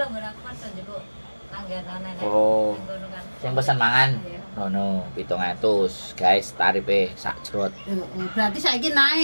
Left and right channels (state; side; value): inverted; both; correlation -1.00